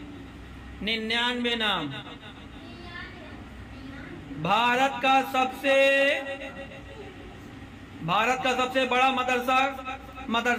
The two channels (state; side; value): identical; both; correlation 1.00